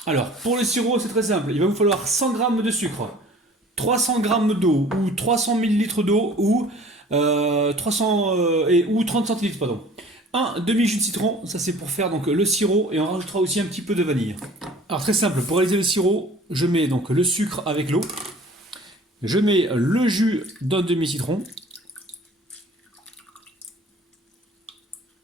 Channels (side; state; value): both; normal; correlation 0.48